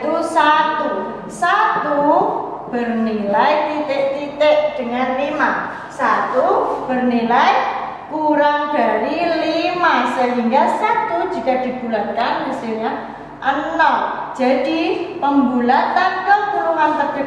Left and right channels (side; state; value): both; identical; correlation 1.00